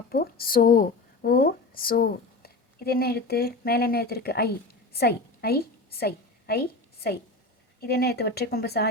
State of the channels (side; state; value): right; quieter; 3.2 dB